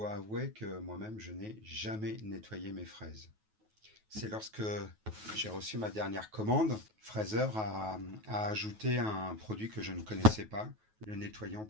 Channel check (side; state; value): left; late; 9.3 ms